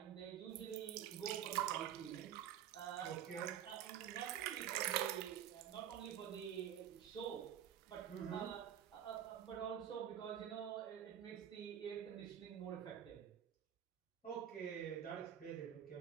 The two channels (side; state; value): left; quieter; 10.1 dB